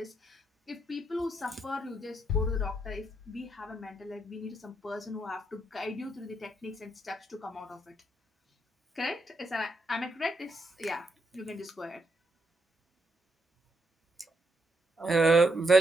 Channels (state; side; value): normal; both; correlation 0.79